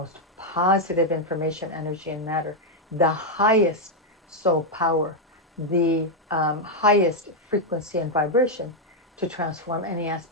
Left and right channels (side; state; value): both; normal; correlation 0.01